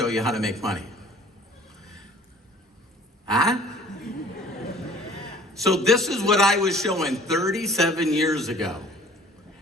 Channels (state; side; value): normal; both; correlation 0.50